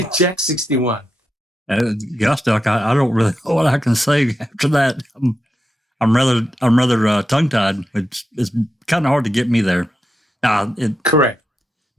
Jack 61. Gosh, Doc, I don't really know what I can say after that. I'm rather tongue tied. It's kind of hard to get me there. Correct.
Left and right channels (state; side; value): normal; both; correlation 0.87